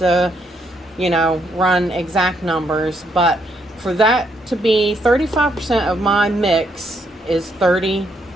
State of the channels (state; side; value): normal; both; correlation 0.74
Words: run exact numbers. But for that to be 35% of my mix is